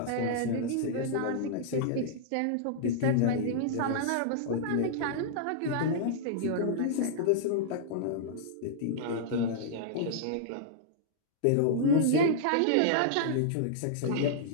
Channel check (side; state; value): both; different; correlation -0.02